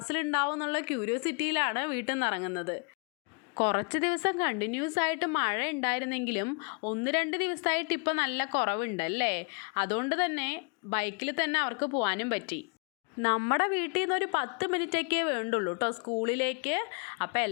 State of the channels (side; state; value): right; quieter; 36.9 dB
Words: എന്നുള്ള ക്യൂരിയോസിറ്റിയിലാണ് വീട്ടിൽ നിന്ന് ഇറങ്ങുന്നത്. കുറച്ച് ദിവസം കണ്ടിന്യൂസ് ആയിട്ട് മഴ ഉണ്ടായിരുന്നെങ്കിലും 1-2 ദിവസമായിട്ട് ഇപ്പം നല്ല കുറവുണ്ടല്ലേ? അതുകൊണ്ട് തന്നെ ബൈക്കിൽ തന്നെ അവർക്ക് പോകാനും പറ്റി. നമ്മുടെ വീട്ടിൽ നിന്ന് ഒരു 10 മിനിറ്റൊക്കെ വേണ്ടുള്ളൂ കേട്ടോ സ്കൂളിലേക്ക്. അപ്പം